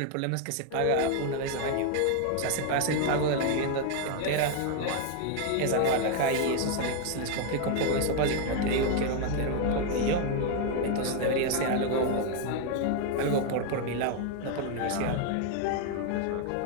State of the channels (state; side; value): different; both; correlation 0.01